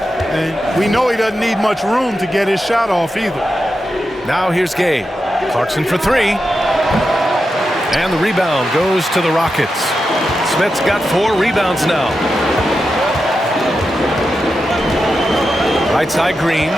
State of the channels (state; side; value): normal; both; correlation 0.89